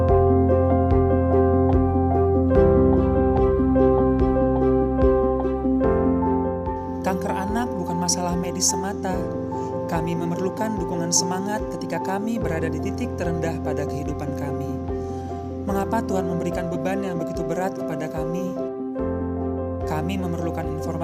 Kanker anak bukan masalah medis semata. Kami memerlukan dukungan semangat ketika kami berada di titik terendah pada kehidupan kami. Mengapa Tuhan memberikan beban yang begitu berat kepada kami? Kami memerlukan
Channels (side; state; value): both; identical; correlation 1.00